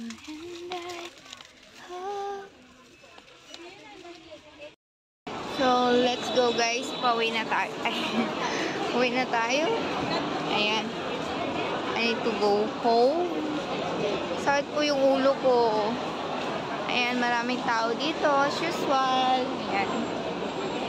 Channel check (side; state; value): both; identical; correlation 1.00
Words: and I hope. So, let's go guys. Pauwi na tayo. Uwi na tayo. Ayan. I need to go home. Sakit po yung ulo ko. Ayan, maraming tao dito. As usual. Ayan.